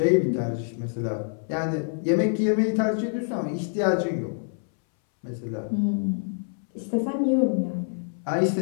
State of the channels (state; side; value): silent; right; 61 dB below the other